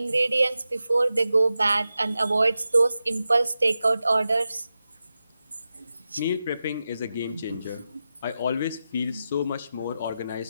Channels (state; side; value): inverted; both; correlation -0.91